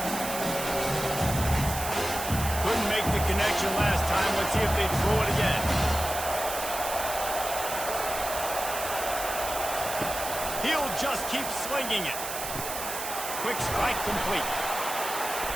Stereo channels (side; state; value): right; noise; hiss, 6 dB below the sound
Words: just keep slinging it. Quick strike complete.